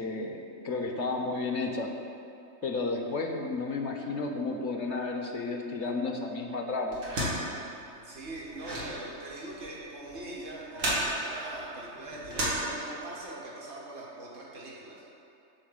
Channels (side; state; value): left; late; 3.3 ms